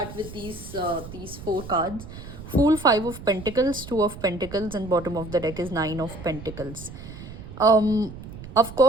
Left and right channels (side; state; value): right; noise; rumble, 13 dB below the sound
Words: with these four cards. Fool, Five of Pentacles, Two of Pentacles, and bottom of the deck is Nine of Pentacles. Of